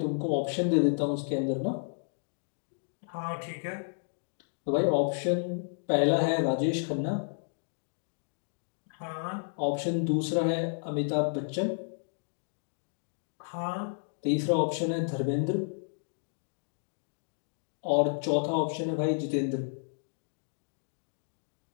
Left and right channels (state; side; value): silent; right; digital silence